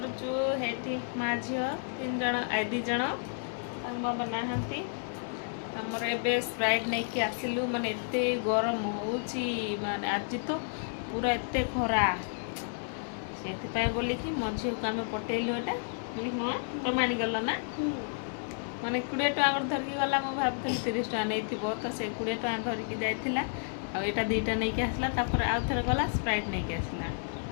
हेटी माँ झी तीन जन दी जन बाबा नहांती आमर एबे स्प्राइट नहीं कि आसिलु माने एते गरम होउची माने आज तो पूरा एते खरा से बोलिकी मो झी को आम पटेलु एटा तुम आनीगल ना माने 20 टका धरिकी गला मु भाबुଥିଲି 30 टका नहीं तो से 20 टका धरिकी जाइथिला आ एटा दुईटा नहीं कि आसला तापर आउ थरे गला स्प्राइट नहीं कि आसला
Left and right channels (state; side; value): silent; right; digital silence